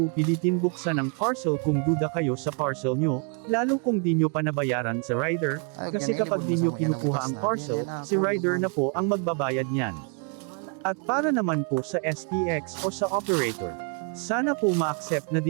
pilitin buksan ang parcel kung duda kayo sa parcel nyo, lalo kung di nyo pa nabayaran sa rider, kasi kapag di nyo kinukuha ang parcel, si rider na po ang magbabayad niyan. At para naman po sa SPX o sa operator, sana po ma-accept na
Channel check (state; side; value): quieter; left; 39.3 dB